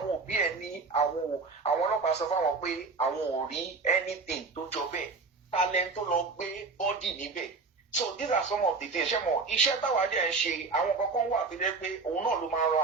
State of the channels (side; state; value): left; quieter; 4.2 dB